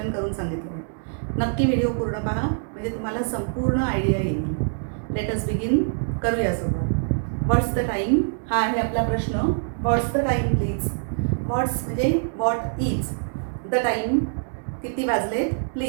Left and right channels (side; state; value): left; silent; digital silence